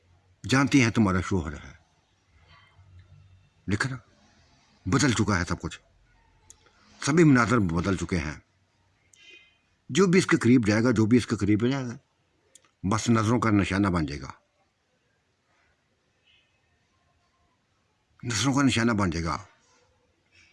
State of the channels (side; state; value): both; identical; correlation 1.00